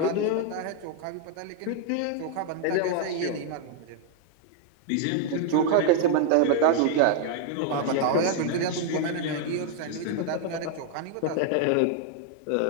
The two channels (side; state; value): both; different; correlation 0.00